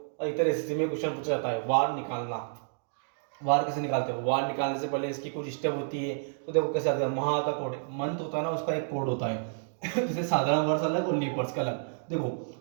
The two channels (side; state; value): left; silent; digital silence